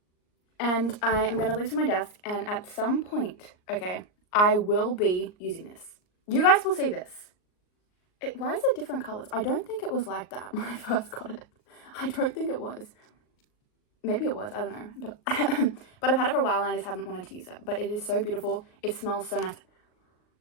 And I am going to leave it on my desk, and at some point, okay, I will be using this. You guys will see this. Why is it different colors? I don't think it was like that when I first got it. I don't think it was. Maybe it was, I don't know. But, but I've had it for a while and I just haven't wanted to use it. But it is so beautiful. It smells so nice.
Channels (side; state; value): right; late; 38 ms